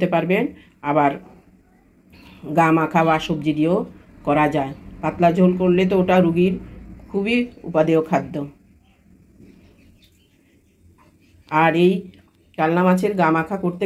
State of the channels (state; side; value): identical; both; correlation 1.00